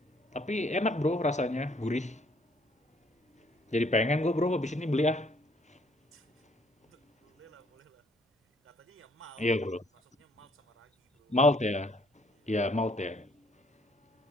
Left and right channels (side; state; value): both; normal; correlation 0.65